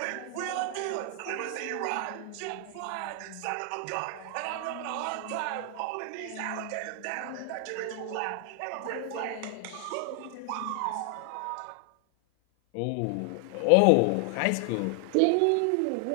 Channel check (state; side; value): different; both; correlation 0.00